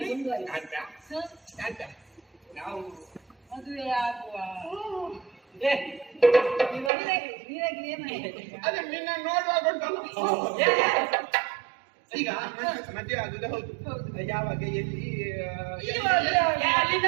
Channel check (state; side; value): drops out; left; at 6.9 s